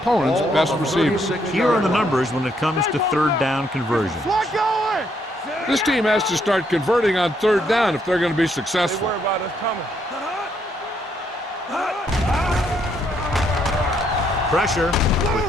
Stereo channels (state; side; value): normal; both; correlation 0.73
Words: best receiver. Here are the numbers when it comes to third down conversions. This team has to start converting on third down if they're going to be successful. Worry about us coming. Pressure with